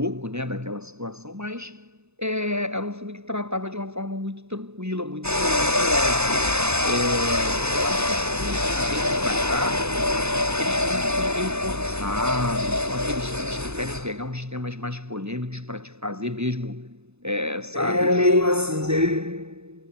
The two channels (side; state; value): left; late; 0.80 ms